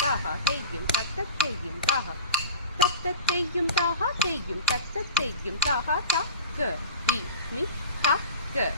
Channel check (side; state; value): both; inverted; correlation -0.34